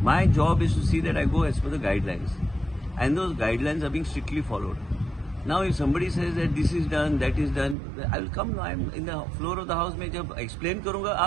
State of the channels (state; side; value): drops out; left; at 7.8 s